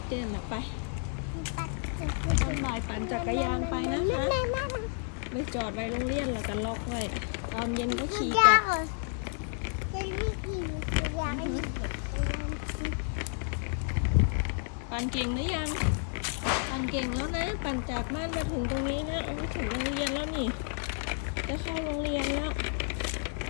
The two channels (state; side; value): silent; right; 57 dB below the other